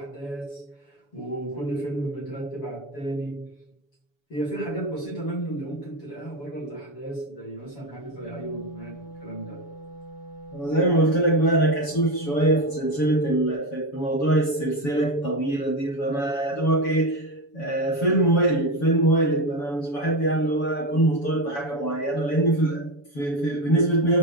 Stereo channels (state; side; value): late; right; 7.0 ms